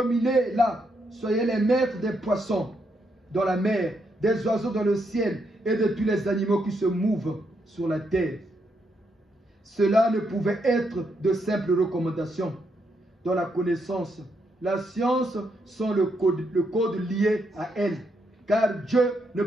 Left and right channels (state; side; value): normal; both; correlation 0.78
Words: Soyez les maîtres des poissons dans la mer, des oiseaux dans le ciel et de tous les animaux qui se mouvent sur la terre. Cela ne pouvait être de simples recommandations. Dans la connaissance, la science sont le code lié à elle, car Dieu ne